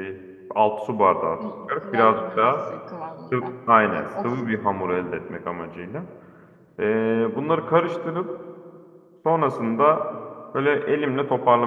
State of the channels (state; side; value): identical; both; correlation 1.00